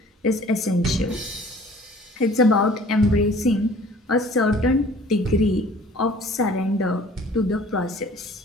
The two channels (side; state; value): both; normal; correlation 0.51